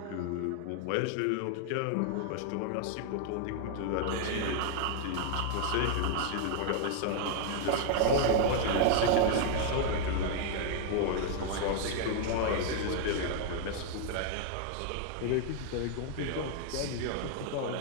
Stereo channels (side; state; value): both; different; correlation 0.00